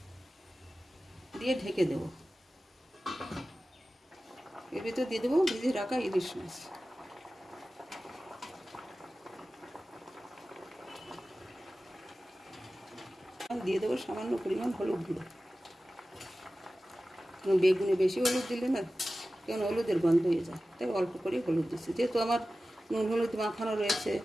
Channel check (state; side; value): normal; both; correlation 0.95